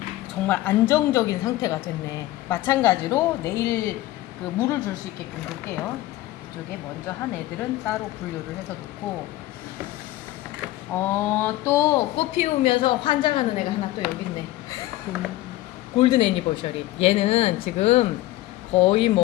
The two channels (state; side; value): quieter; right; 16.5 dB